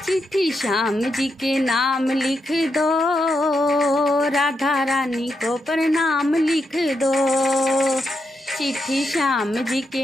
चिट्ठी श्याम जी के नाम लिख दो, राधा रानी को प्रणाम लिख दो। चिट्ठी श्याम जी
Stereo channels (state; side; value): normal; both; correlation 0.83